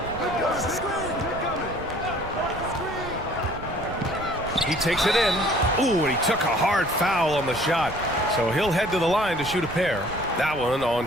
He takes it in. Ooh, and he took a hard foul on the shot. So he'll head to the line to shoot a pair. That one on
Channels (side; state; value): right; noise; rumble, 13 dB below the sound